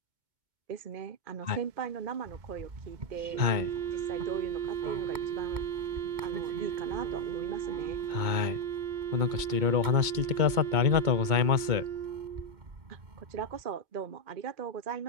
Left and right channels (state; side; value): late; left; 2.2 ms